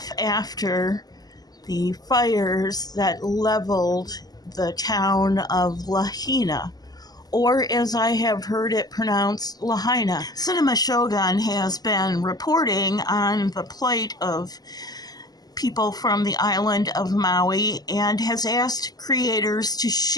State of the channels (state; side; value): late; right; 0.19 ms